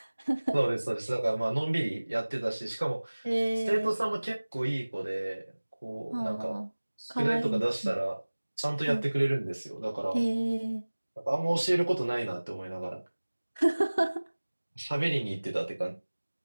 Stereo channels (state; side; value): inverted; both; correlation -1.00